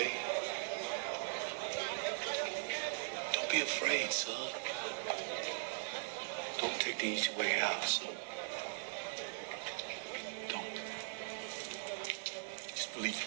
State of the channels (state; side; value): silent; left; digital silence